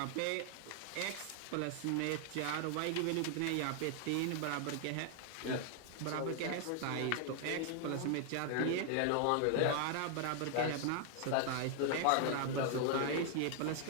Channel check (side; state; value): both; different; correlation 0.00